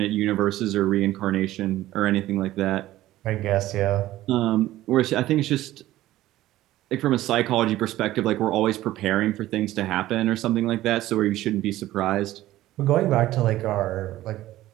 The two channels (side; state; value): left; quieter; 15.2 dB